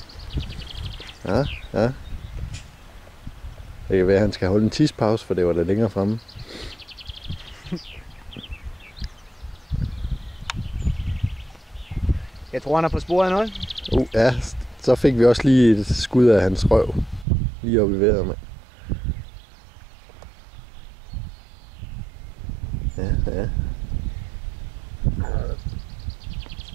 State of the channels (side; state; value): left; drops out; at 17.2 s